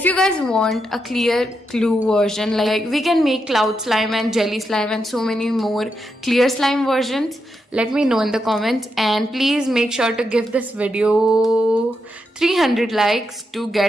you guys want a clear glue version, like we can make cloud slime and jelly slime and so many more clear slime versions, let me know in the comments. And please make sure to give this video 300 likes to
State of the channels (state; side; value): normal; both; correlation 0.84